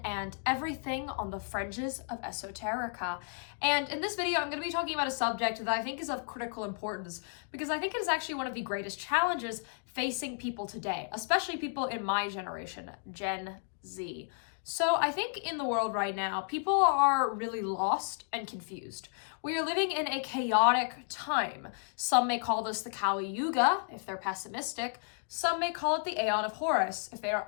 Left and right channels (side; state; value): right; silent; 56 dB below the other